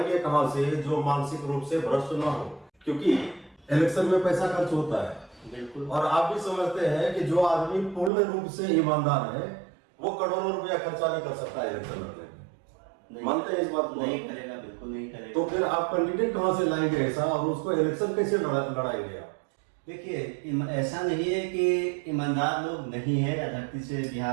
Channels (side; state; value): left; drops out; at 8.1 s